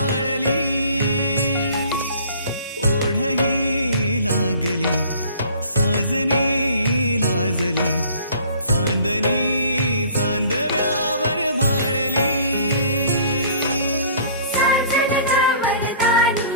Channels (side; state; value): both; inverted; correlation -0.51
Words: ओढही लागली साजनी लाजली चांदणी चांदव्यावर भाळली